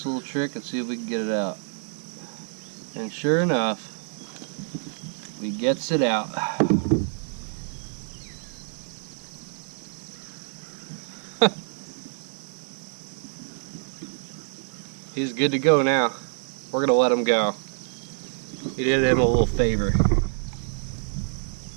little trick and see if we can get it out. And sure enough, we gets it out. He's good to go now. We're gonna let him go. We did him a little favor.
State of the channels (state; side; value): silent; left; digital silence